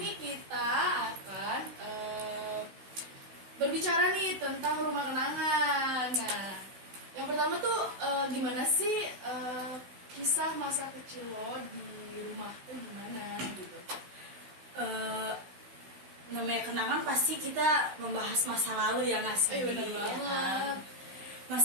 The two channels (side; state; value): left; late; 16 ms